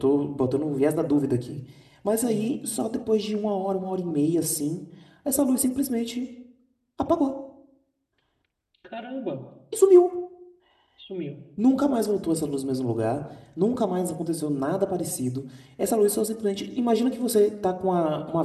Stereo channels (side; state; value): both; identical; correlation 1.00